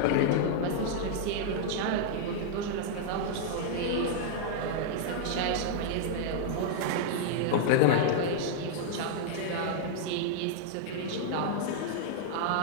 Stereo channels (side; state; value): both; different; correlation -0.01